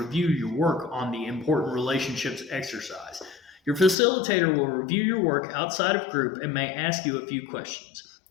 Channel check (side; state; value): right; drops out; at 4.0 s